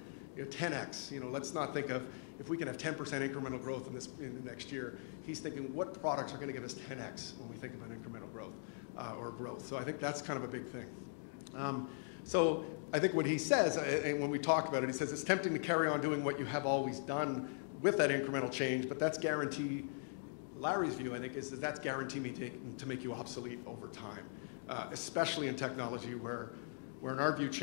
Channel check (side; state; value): right; silent; digital silence